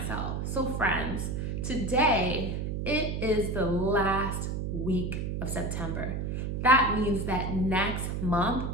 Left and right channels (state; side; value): noise; right; hum, 2 dB below the sound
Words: So friends, today it is the last week of September. That means that next month